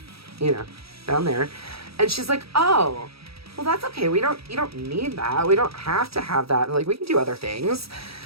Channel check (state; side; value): late; left; 0.77 ms